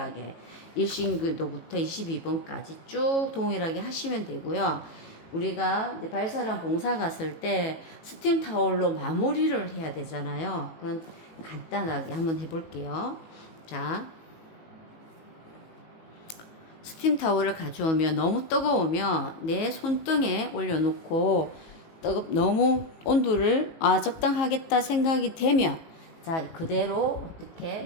1신교도부터 22번까지 쭉 동일하게 하시면 되고요. 우리가 이제 발사랑 봉사 갔을 때 스팀 타올로 마무리를 해야 되잖아요. 그건 간단하게 한번 해볼게요. 자, 스팀 타올을 가져오면 너무 뜨거우면 내 손등에 올려놓고 너무 온도를 적당하겠다 생각이 되면 자, 그대로 어떻게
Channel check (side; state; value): right; late; 19 ms